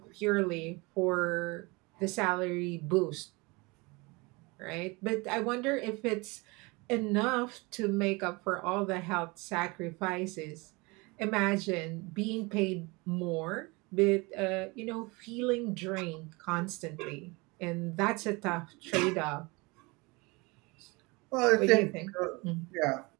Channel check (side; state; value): left; quieter; 26.0 dB